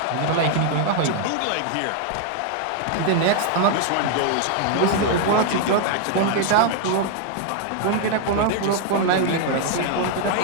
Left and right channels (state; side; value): different; both; correlation 0.00